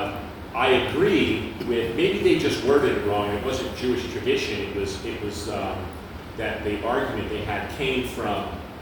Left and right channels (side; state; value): both; identical; correlation 1.00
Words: agree with, maybe they just worded it wrong. It wasn't Jewish tradition. It was that the argument they had came from